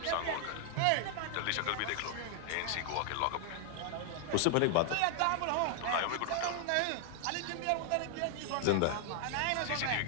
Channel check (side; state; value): both; different; correlation 0.00